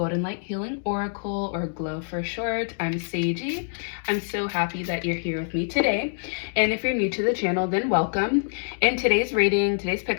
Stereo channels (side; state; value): right; silent; digital silence